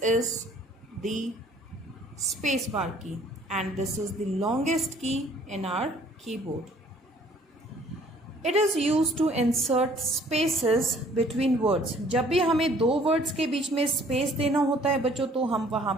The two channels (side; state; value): both; normal; correlation 0.57